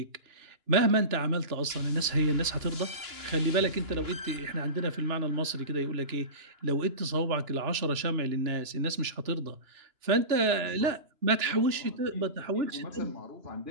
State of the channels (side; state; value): left; late; 2.9 ms